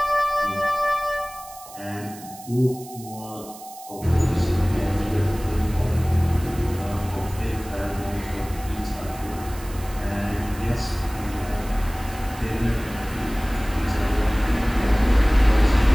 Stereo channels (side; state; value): right; noise; hiss, 18 dB below the sound